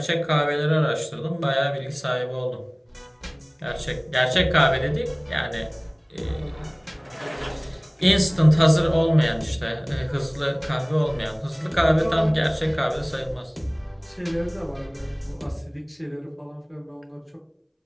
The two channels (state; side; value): identical; both; correlation 1.00